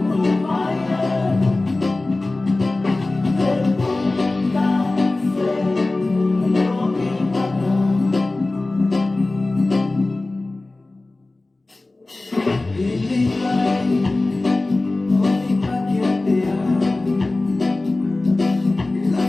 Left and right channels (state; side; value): quieter; right; 3.0 dB